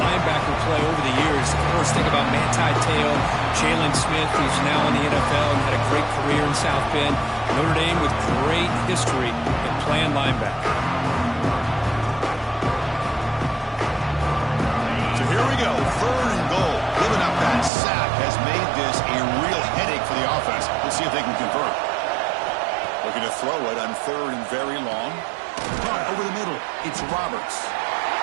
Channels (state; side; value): drops out; left; at 17.7 s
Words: play over the years. Of course, think about Manti Te'o, Jalen Smith, who's now in the NFL and had a great career in South Bend. Notre Dame with great history in playing linebacker. So here we go, 3rd and goal. Giving up that sack has made this a real headache for the offense. We'll see if they can convert. Looking to throw it on 3rd and very long. Caught over the middle. It's Roberts.